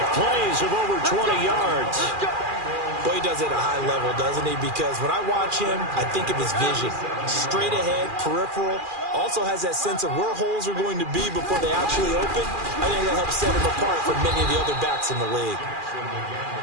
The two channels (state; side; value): late; left; 2.4 ms